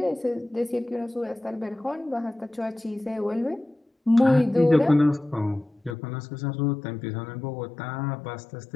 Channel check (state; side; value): drops out; right; at 6.0 s